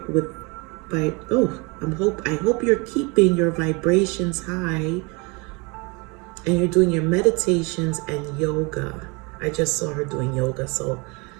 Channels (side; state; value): left; quieter; 28.7 dB